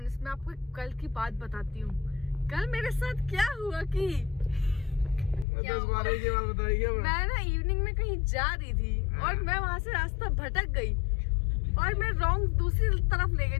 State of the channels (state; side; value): drops out; right; at 5.5 s